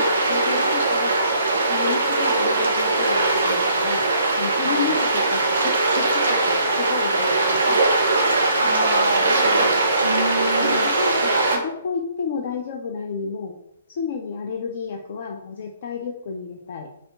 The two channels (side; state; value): both; inverted; correlation -0.64